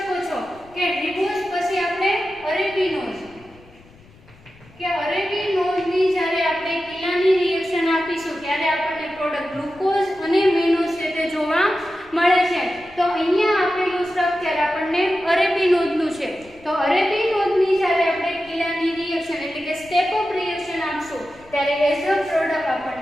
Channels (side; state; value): left; noise; rumble, 25 dB below the sound